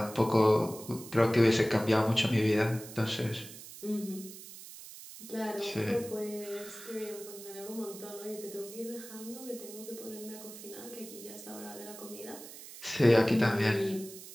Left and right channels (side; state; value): right; noise; hiss, 15 dB below the sound